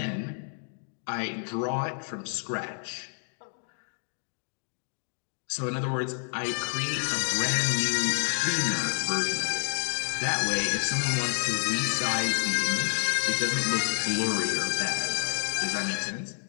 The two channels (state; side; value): silent; right; digital silence